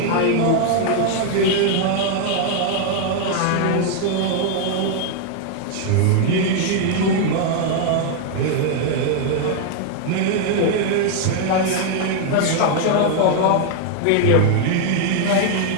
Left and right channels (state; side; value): different; both; correlation 0.00